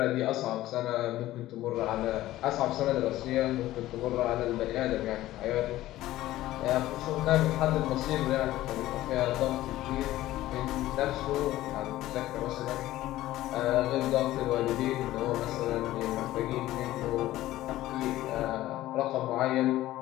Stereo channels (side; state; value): right; quieter; 15.4 dB